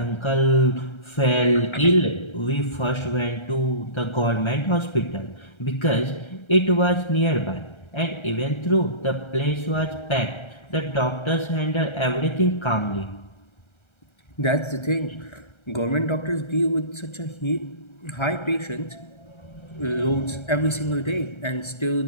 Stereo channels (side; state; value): right; late; 1.3 ms